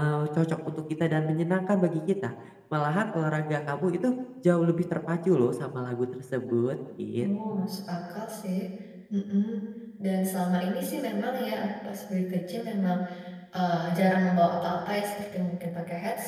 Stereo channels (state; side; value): identical; both; correlation 1.00